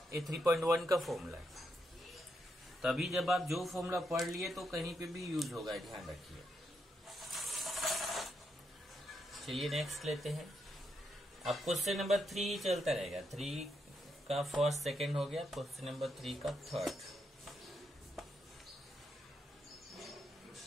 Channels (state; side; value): normal; both; correlation 0.81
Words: ये 3.1 का फॉर्मूला है, तभी जब आप जो फॉर्मूला पढ़ लिए तो कहीं पे भी यूज होगा, ध्यान रखिए। चलिए नेक्स्ट लेते हैं। अब क्वेश्चन नंबर 3 चलता रहेगा, 3 का फर्स्ट सेकंड हो गया, क्वेश्चन नंबर 3 का थर्ड।